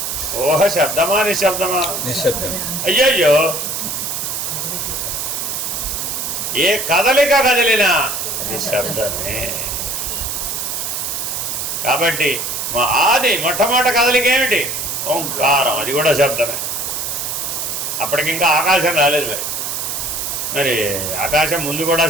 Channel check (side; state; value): right; noise; hiss, 3 dB below the sound